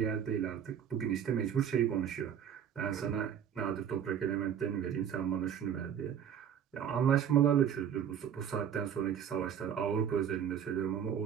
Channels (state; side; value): quieter; left; 8.8 dB